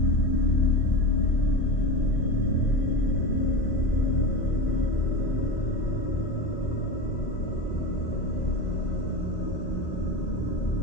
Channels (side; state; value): right; late; 2.0 ms